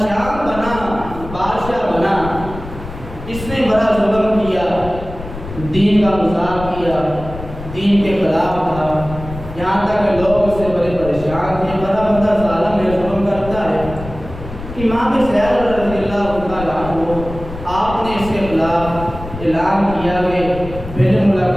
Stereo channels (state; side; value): noise; left; rumble, 11 dB below the sound